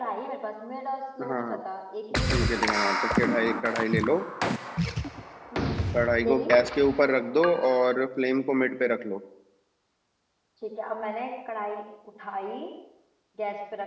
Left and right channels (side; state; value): both; identical; correlation 1.00